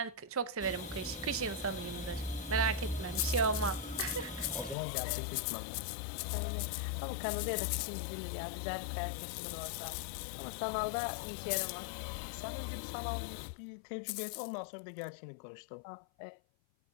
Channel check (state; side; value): drops out; right; at 4.8 s